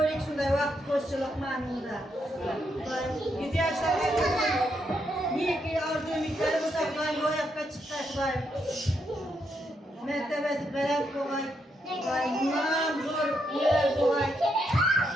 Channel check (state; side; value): normal; both; correlation 0.79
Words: shunday vaqt qo'shchilik ma'noda. Dayım 100 yoshlarga neki orzu-umidlari bo'lsa dayım ro'yobga chiqdi dayım. Mertebesi veren kolay, bundan zor yer kolay.